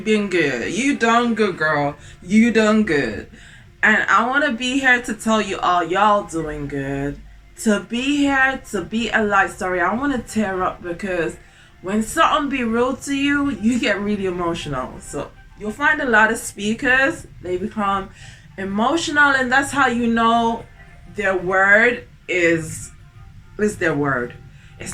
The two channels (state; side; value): identical; both; correlation 1.00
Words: been good. You done good, girl. You done good. And I want to be here to tell you all y'all doing good. To be here, to be alive. Sorry, I want to tear up because when something be real to you, you get really emotional. So you'll find a lot of speakers, they become emotional, and that's how you know their word is their word. It's